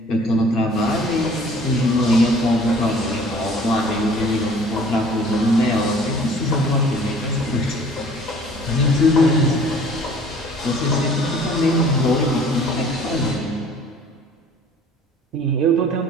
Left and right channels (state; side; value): normal; both; correlation 0.51